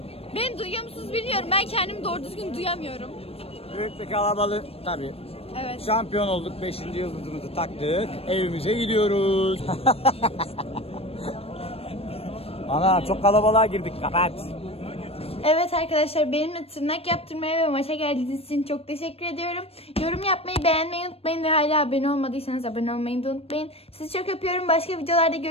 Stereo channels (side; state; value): right; late; 0.28 ms